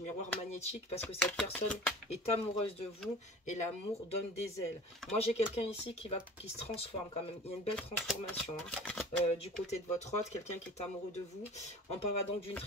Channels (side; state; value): both; normal; correlation 0.41